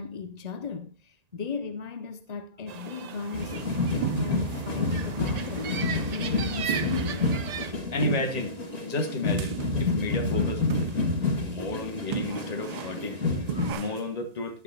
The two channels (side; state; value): left; late; 1.9 ms